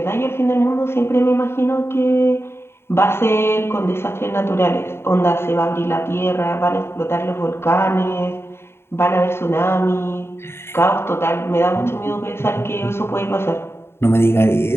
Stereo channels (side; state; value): right; late; 0.12 ms